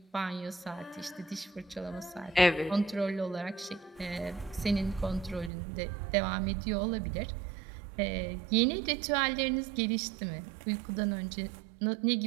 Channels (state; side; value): drops out; left; at 5.5 s